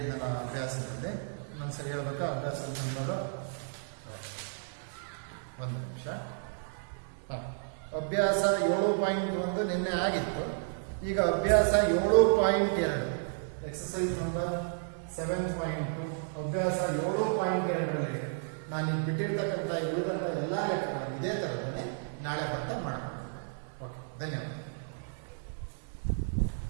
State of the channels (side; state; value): left; silent; digital silence